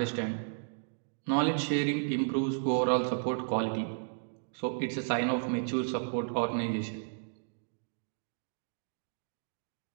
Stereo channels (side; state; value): left; silent; digital silence